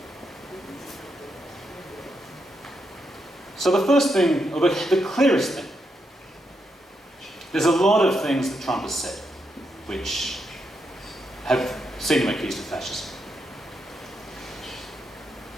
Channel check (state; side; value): normal; both; correlation 0.82